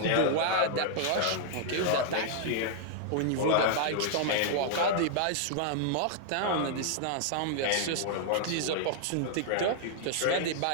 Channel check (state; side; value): different; both; correlation -0.01